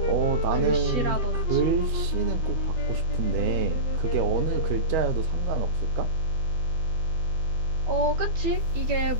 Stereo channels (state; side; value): late; left; 13 ms